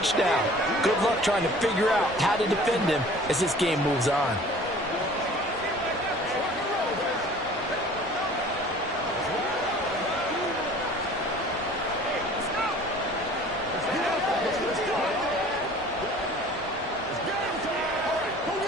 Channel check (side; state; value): both; normal; correlation 0.47